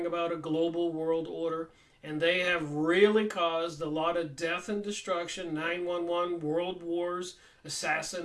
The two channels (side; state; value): both; identical; correlation 1.00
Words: about a global world order, and they have really caused a lot of death and destruction, 9/11, world wars,